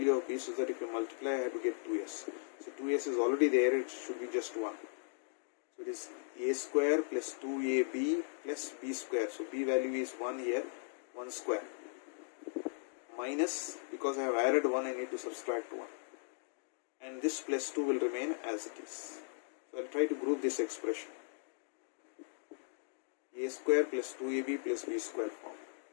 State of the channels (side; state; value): right; silent; digital silence